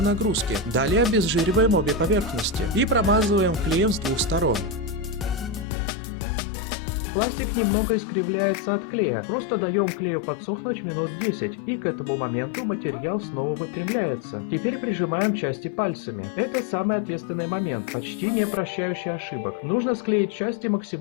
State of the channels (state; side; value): drops out; right; at 5.7 s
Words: нагрузки. Далее обезжириваем обе поверхности. И промазываем клеем с двух сторон. Пластик немного искривляется от клея, просто даем клею подсохнуть минут 10, и к этому моменту материал снова выпрямляется. Теперь прижимаем части пальцами. Это самый ответственный момент, почти не прощающий ошибок. Нужно склеить части